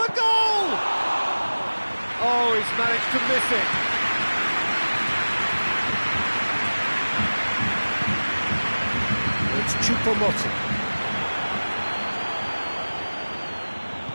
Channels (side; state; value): both; inverted; correlation -1.00